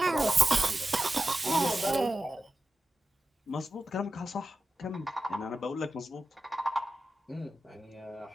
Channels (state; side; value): normal; both; correlation 0.93